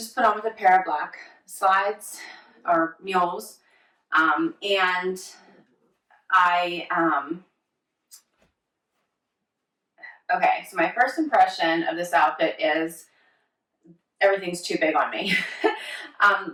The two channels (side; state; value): both; identical; correlation 1.00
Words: put on with a pair of black slides or mules. And okay, so my first impression of this outfit is everything's too big on me.